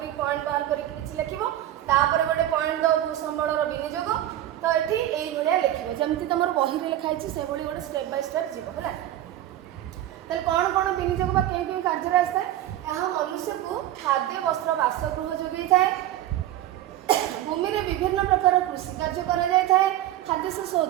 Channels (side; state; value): left; quieter; 13.2 dB